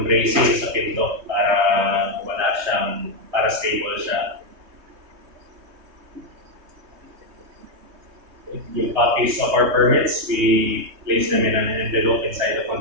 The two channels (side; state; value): left; late; 3.2 ms